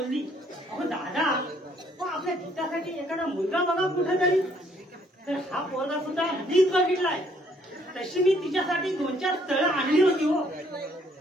अहो दादा आपल्या गीतासाठी एखादा मुलगा बघा कुठेतरी। तर हा पोरगा सुद्धा मीच बघितलाय। तशी मी तिच्यासाठी 2-4 स्थळं आणली होती हो,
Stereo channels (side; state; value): both; normal; correlation 0.65